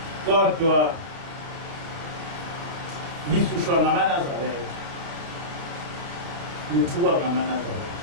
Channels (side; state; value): left; late; 30 ms